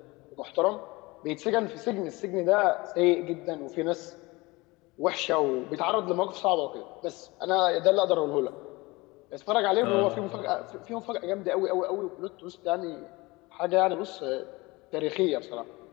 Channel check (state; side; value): quieter; right; 23.0 dB